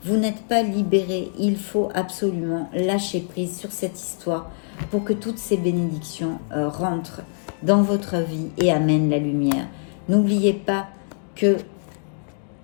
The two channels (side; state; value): right; silent; digital silence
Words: Vous n'êtes pas libéré. Il faut absolument lâcher prise sur cette histoire pour que toutes ces bénédictions rentrent dans votre vie et amènent la lumière. N'oubliez pas que...